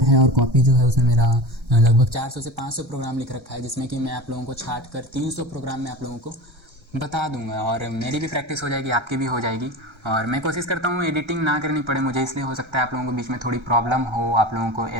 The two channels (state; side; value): late; left; 1.3 ms